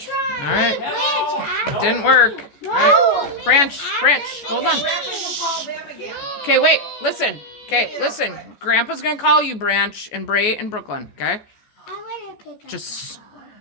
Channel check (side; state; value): right; late; 14 ms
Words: try. right. Hello? Didn't work. All right. Branch, hold on. Grandpa, you call them again. Okay, wait, listen. Okay, listen. Grandpa's gonna call you, Branch, and Bray, and Brooklyn, okay? I want to pick up. Just,